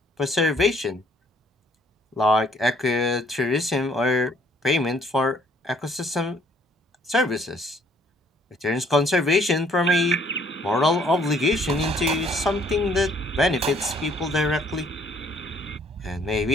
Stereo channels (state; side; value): normal; both; correlation 0.63